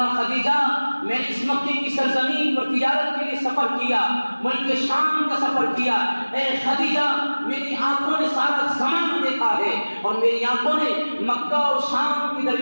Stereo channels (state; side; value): inverted; both; correlation -1.00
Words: خدیجہ، میں نے اس مکے کی سرزمین پر تجارت کے لیے سفر کیا، ملک شام کا سفر کیا، اے خدیجہ میری آنکھوں نے سارا زمانہ دیکھا ہے اور میری آنکھوں نے مکہ اور شام کے